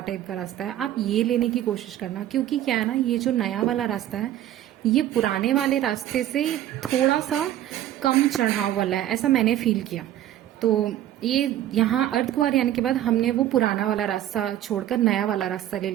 टाइप का रास्ता है, आप ये लेने की कोशिश करना। क्योंकि क्या है ना, ये जो नया वाला रास्ता है ये पुराने वाले रास्ते से थोड़ा सा कम चढ़ाव वाला है, ऐसा मैंने फील किया। तो ये यहाँ अर्धकुंवारी आने के बाद हमने वो पुराना वाला रास्ता छोड़कर नया वाला रास्ता ले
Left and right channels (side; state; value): left; quieter; 12.4 dB